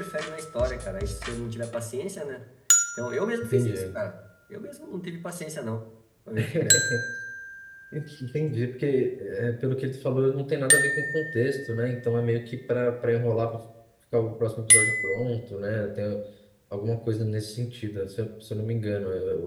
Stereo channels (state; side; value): identical; both; correlation 1.00